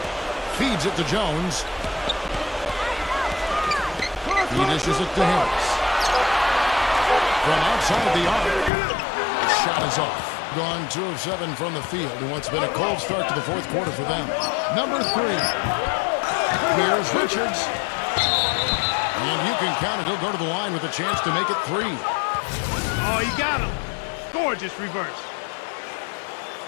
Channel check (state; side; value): drops out; right; at 8.7 s